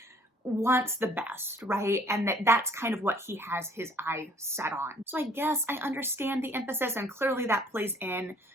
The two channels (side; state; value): both; normal; correlation 0.58